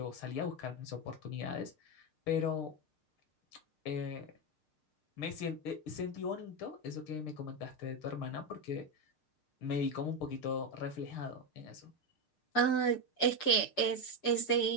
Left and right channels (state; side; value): late; right; 6.6 ms